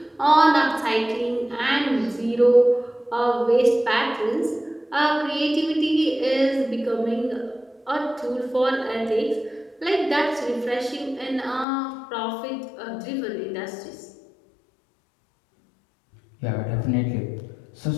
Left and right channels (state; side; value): drops out; right; at 11.7 s